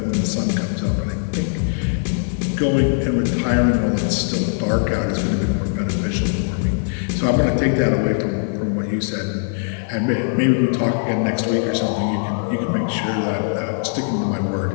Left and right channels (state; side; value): silent; right; 64 dB below the other